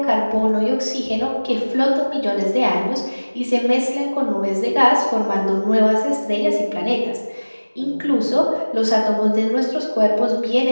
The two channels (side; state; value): both; inverted; correlation -1.00